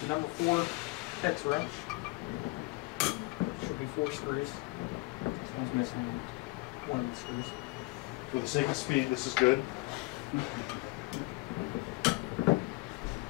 number 4 hex wrench. Should be 4 screws. This one's missing one of the screws. For the sake of speed, this is good.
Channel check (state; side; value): quieter; right; 24.3 dB